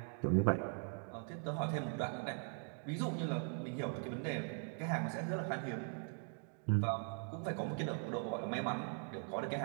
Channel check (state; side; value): silent; left; 50 dB below the other